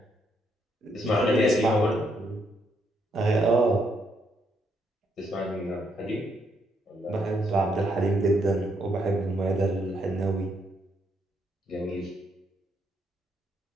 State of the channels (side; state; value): both; normal; correlation 0.75